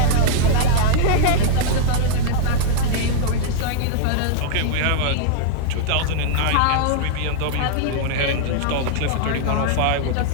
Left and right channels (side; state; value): both; different; correlation -0.01